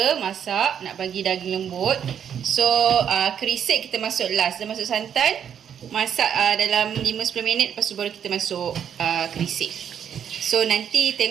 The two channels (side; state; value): left; quieter; 8.6 dB